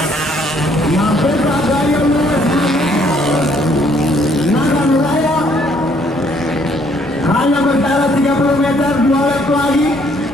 Mampukah Gaya Lewis? Nagar Raya hanya berjarak 30 meter, 2 lap lagi.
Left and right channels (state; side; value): normal; both; correlation 0.65